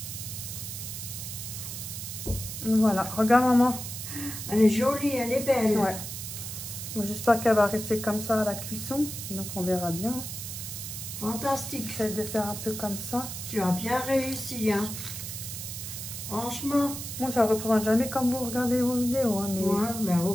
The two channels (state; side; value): noise; right; hiss, 7 dB below the sound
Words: Voilà, regarde maman. Elle est jolie, elle est belle. Ouais. J'espère qu'elle va rester comme ça à la cuisson. Donc on verra bien. Fantastique. J'essaie de faire un peu comme ça. Tu as bien réussi, hein. Franchement. Moi, ça ne représente jamais comme vous regardez vos vidéos. Hein, mais... Ouais, mais ou